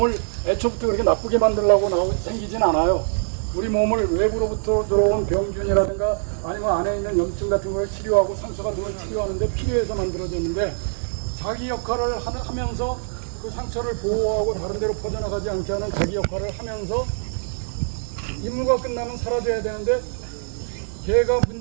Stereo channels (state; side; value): silent; left; 63 dB below the other